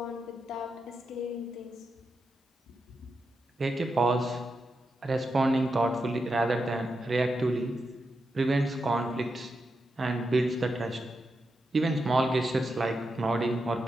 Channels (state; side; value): normal; both; correlation 0.87